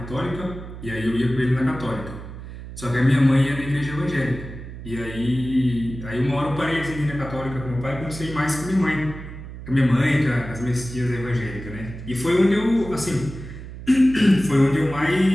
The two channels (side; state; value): right; noise; hum, 12 dB below the sound